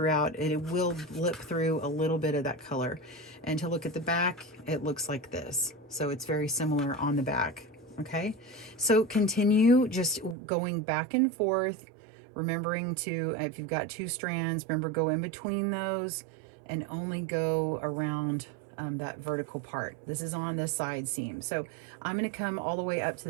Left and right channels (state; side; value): drops out; left; at 10.4 s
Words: and it will blip through a little bit of that color. And to look at the back, it looks like this. So it's very similar on the back. Okay, so continue just going back and forth, remembering to, if you've got 2 strands, remember, go in between those and only go around that vertical part. This is on this side seam. So I'm going to come all the way up to